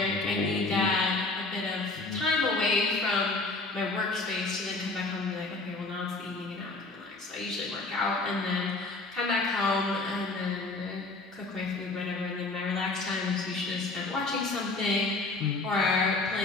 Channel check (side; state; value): right; quieter; 3.3 dB